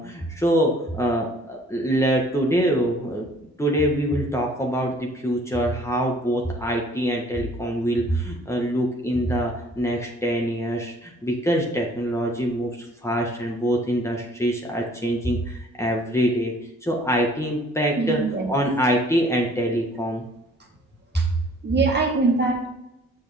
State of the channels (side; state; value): both; normal; correlation 0.56